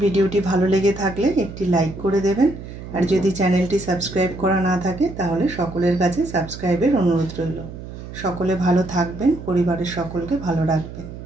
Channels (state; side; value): noise; right; hum, 12 dB below the sound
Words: ভিডিওটি ভালো লেগে থাকলে একটি লাইক করে দেবেন, আর যদি চ্যানেলটি সাবস্ক্রাইব করা না থাকে তাহলে সকলের কাছে সাবস্ক্রাইবের অনুরোধ রইল। সকলে ভালো থাকবেন, পরিবারের সকলকে ভালো রাখবেন।